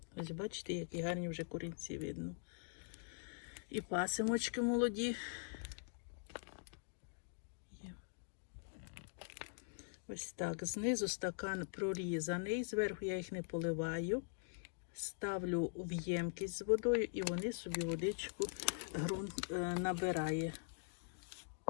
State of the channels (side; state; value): right; silent; digital silence